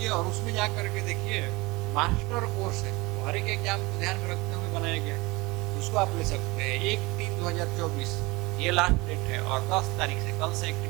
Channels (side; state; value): left; quieter; 23.3 dB